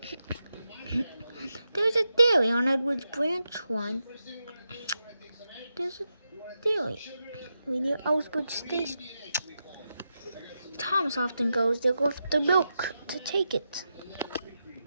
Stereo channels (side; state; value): both; inverted; correlation -0.88